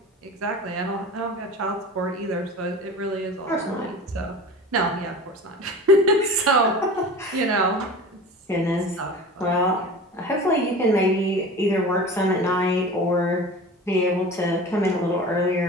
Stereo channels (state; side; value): normal; both; correlation 0.36